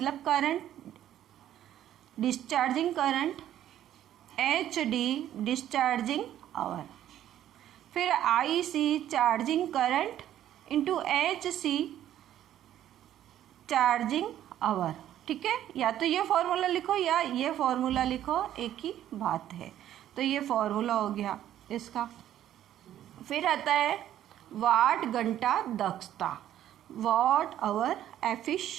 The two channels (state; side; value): quieter; left; 11.8 dB